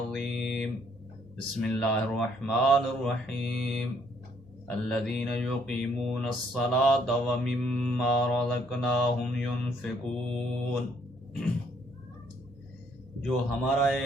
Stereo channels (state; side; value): normal; both; correlation 0.67